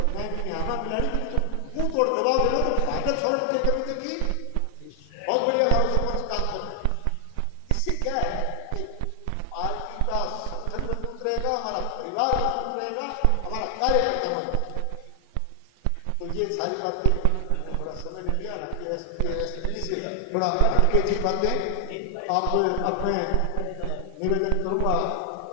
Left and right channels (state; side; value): different; both; correlation 0.00